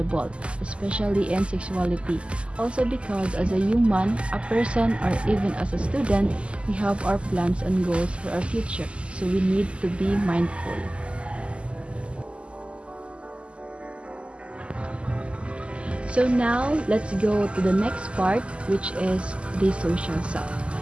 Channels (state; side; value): late; left; 0.054 ms